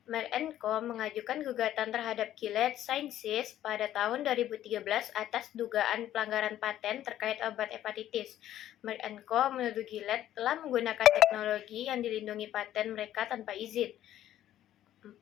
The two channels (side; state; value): right; quieter; 12.4 dB